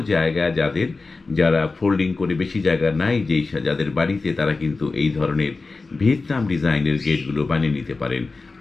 জায়গায়। যারা ফোল্ডিং করে বেশি জায়গা নাই যাদের বাড়িতে, তারা কিন্তু এই ধরনের ভিয়েতনাম ডিজাইনের গেটগুলো বানিয়ে নিতে পারেন।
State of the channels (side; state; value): right; quieter; 3.8 dB